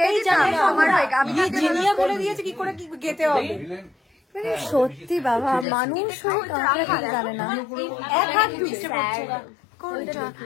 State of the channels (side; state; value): right; drops out; at 5.7 s